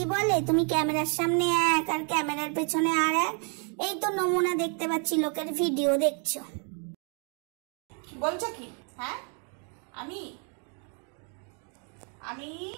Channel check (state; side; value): quieter; left; 39.6 dB